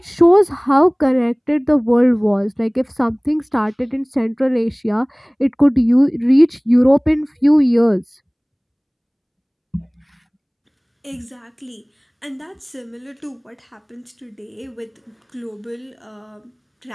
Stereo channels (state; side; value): identical; both; correlation 1.00